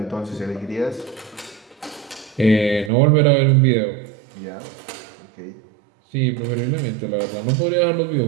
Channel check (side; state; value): left; drops out; at 2.9 s